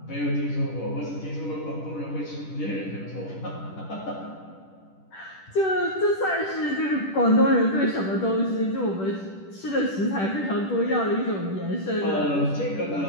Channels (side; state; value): right; late; 10 ms